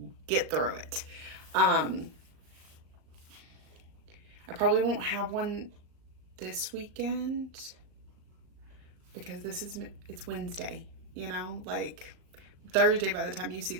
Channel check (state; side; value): late; left; 38 ms